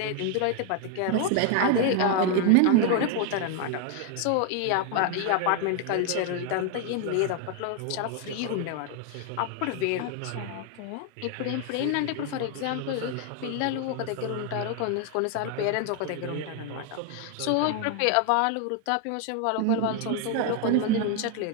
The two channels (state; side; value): different; both; correlation 0.01